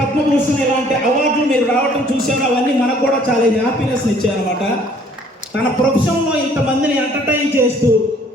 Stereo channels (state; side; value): normal; both; correlation 0.58